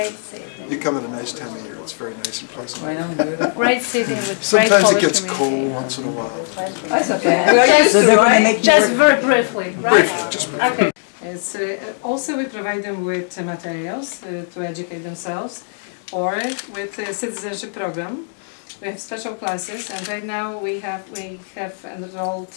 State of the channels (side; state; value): right; silent; digital silence